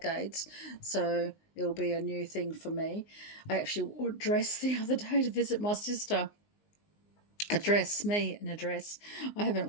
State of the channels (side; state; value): right; late; 19 ms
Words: so it'll be a new thing for me. I actually wore a dress the other day to visit my sister. A dress, me in a dress. I haven't